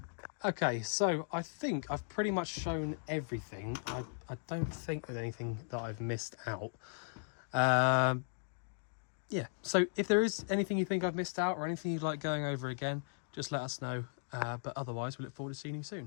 Okay, so I think I've pretty much shown everything. I don't think there's anything that I've missed out. Yeah, so if there is anything you think I've missed out or anything you'd like going over again, just let us know. But otherwise, we look forward to seeing you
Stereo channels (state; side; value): silent; right; digital silence